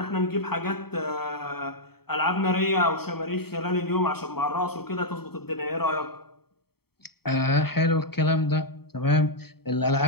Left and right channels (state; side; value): late; right; 0.96 ms